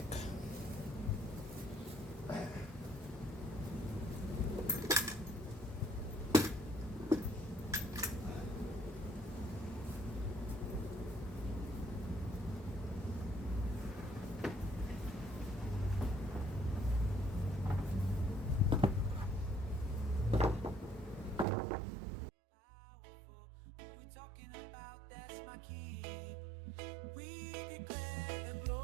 We're talking about, that's my key. We declare the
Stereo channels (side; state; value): left; drops out; at 21.5 s